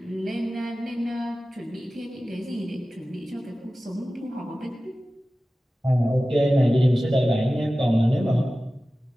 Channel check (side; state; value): both; normal; correlation 0.96